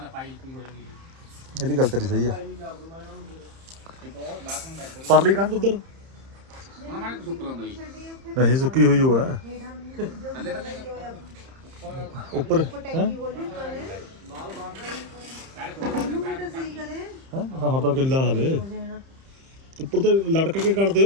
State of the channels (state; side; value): late; left; 30 ms